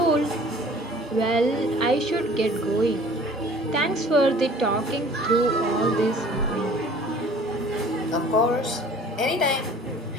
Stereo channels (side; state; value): both; normal; correlation 0.49